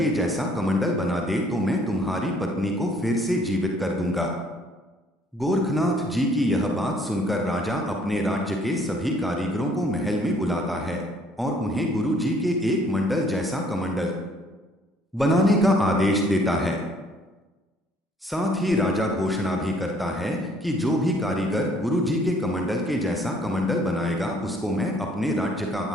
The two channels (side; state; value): both; normal; correlation 0.61